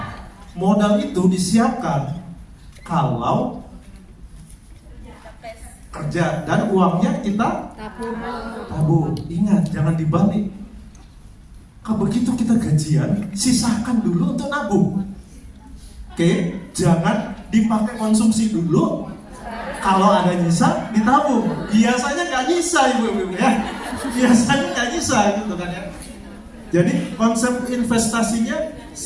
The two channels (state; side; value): identical; both; correlation 1.00